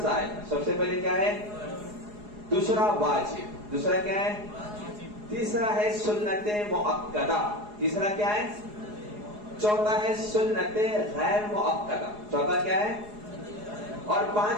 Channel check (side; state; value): left; late; 4.8 ms